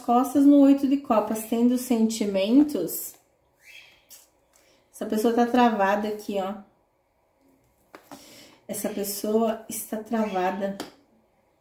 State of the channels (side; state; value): both; identical; correlation 1.00